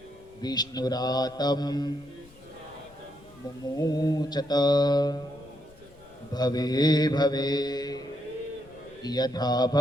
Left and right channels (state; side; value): noise; left; rumble, 25 dB below the sound